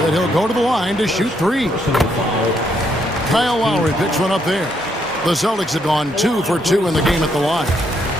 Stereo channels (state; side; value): normal; both; correlation 0.74